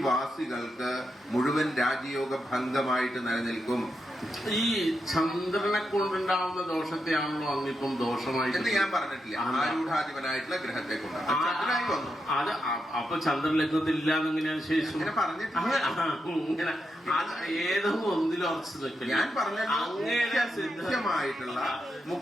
മുഴുവൻ രാജയോഗ ഭംഗമായിട്ട് നിലനിൽക്കും. ഈ ചന്ദ്രനെ കൊണ്ടുണ്ടാവുന്ന ദോഷത്തെയാണല്ലോ അങ്ങിപ്പം ദോഷമായിട്ട് എന്ന് ഞാൻ പറഞ്ഞിട്ടില്ല. ആരൂഢാധിപനായിട്ടുള്ള ഗ്രഹത്തെ കൊണ്ട് ചന്ദ്രനായി വന്നു. അത് അപ്പൊ ചന്ദ്രലഗ്നത്തില്ല എന്നെങ്ങനെയാണ് ശേഷം ഇങ്ങനെ പറഞ്ഞിട്ടില്ല. ഇങ്ങനെ അത് ഏതോ ഒന്നിലും ഉറച്ചു നിൽക്കില്ല. ഞാൻ പറഞ്ഞ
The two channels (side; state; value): both; normal; correlation 0.85